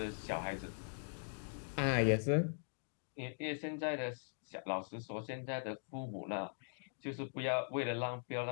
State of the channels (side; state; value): right; silent; digital silence